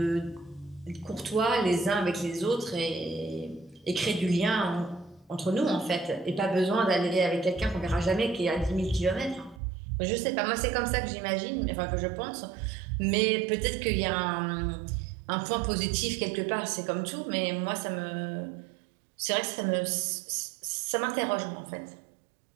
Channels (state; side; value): drops out; left; at 9.6 s